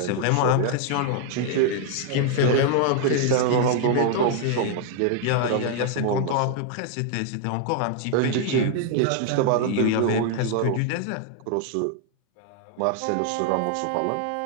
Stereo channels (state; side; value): different; both; correlation 0.00